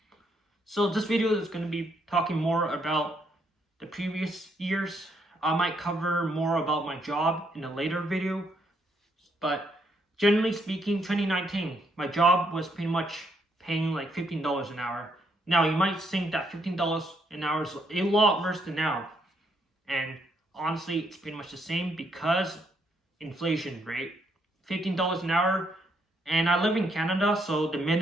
So this video is going to be talking more about the previous years. I might cover more about my job in a later video, but generally speaking, 2019, my job was pretty much paying like $15 an hour. Now you might think that $15 an hour is a lot worse than now, and honestly, it's pretty much the same because inflation rate. $15 an hour, and I live in Canada, so the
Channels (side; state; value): both; normal; correlation 0.74